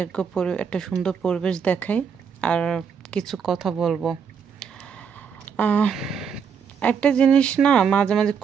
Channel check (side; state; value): left; quieter; 6.8 dB